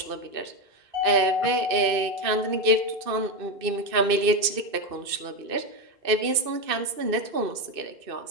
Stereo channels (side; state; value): left; late; 2.6 ms